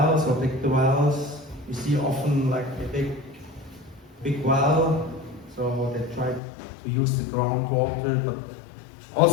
or dig the wells. You see often like a big well, so they try to use the groundwater. But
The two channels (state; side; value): drops out; right; at 6.4 s